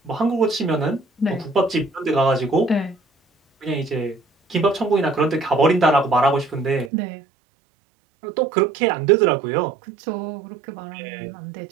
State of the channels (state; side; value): drops out; left; at 6.9 s